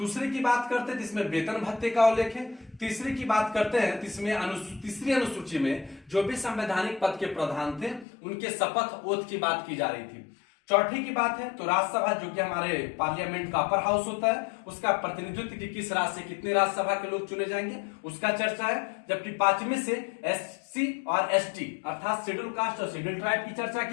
की बात करते हैं जिसमें वेतन भत्ते का उल्लेख है। तीसरी की बात करते हैं जिसमें तीसरी अनुसूची में जो भी संवैधानिक पद के प्रधान थे उनके शपथ ओथ की बात की जा रही थी। चौथी की बात है तो राज्यसभा, जो कि हमारे पार्लियामेंट का अपर हाउस होता है, उसका प्रतिनिधित्व कि किस राज्य से कितने राज्यसभा के लोग चुने जाएंगे उसका चर्चा है। जबकि 5वें से एससी और एसटी अर्थात शेड्यूल कास्ट और शेड्यूल ट्राइब की चर्चा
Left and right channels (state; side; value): drops out; right; at 8.1 s